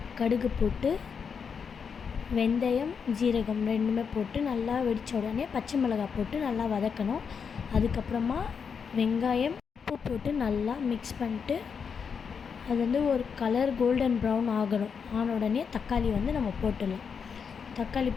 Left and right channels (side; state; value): right; quieter; 6.3 dB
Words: கடுகு போட்டு வெந்தயம், ஜீரகம் ரெண்டுமே போட்டு நல்லா வெடித்த உடனே பச்சை மிளகாய் போட்டு நல்லா வதக்கணும். அதுக்கப்புறமா வெங்காயம், உப்பு போட்டு நல்லா மிக்ஸ் பண்ணிட்டு அது ஒரு கலர் கோல்டன் ப்ரௌன் ஆன உடனே தக்காளி நம்ம போட்டுடலாம். தக்காளி